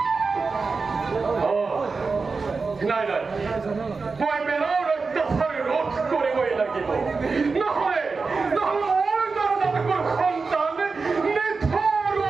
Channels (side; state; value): left; quieter; 4.4 dB